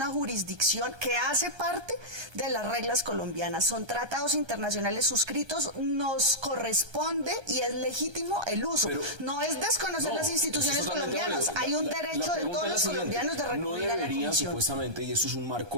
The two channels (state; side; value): late; left; 1.3 ms